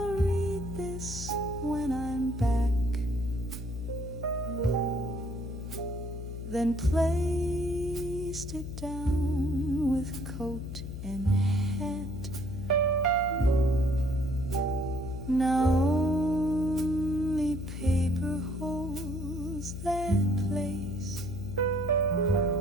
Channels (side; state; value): left; noise; hum, 7 dB below the sound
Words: read this when I'm back, then placed it down with coat and hat. Now only paper holds that place,